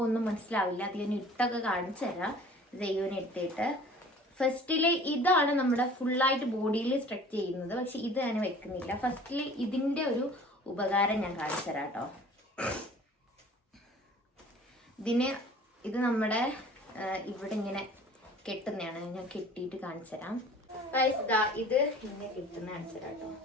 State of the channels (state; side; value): normal; both; correlation 0.47